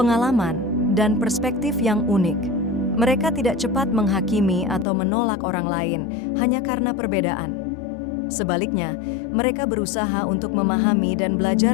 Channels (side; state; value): right; drops out; at 4.9 s